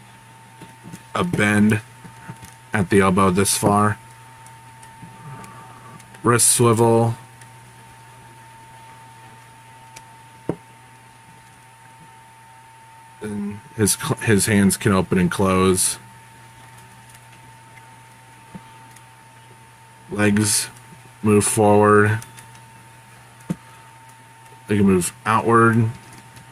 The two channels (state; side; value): identical; both; correlation 1.00